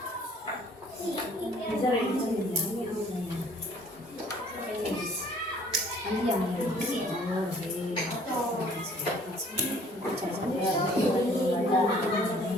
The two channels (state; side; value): normal; both; correlation 0.57